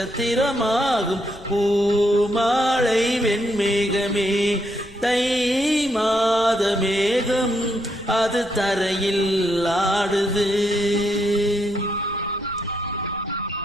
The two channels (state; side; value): noise; left; rumble, 23 dB below the sound